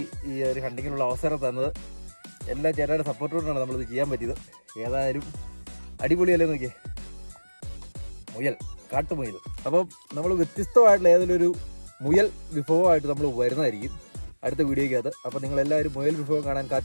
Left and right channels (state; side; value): inverted; both; correlation -1.00